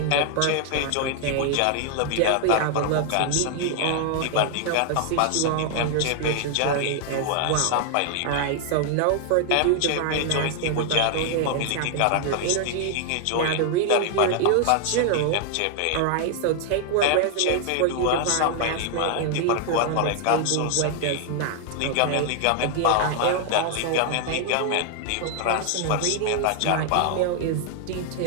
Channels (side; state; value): both; different; correlation 0.00